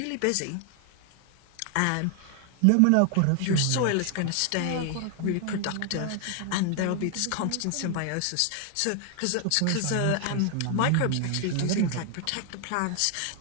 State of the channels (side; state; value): both; different; correlation 0.00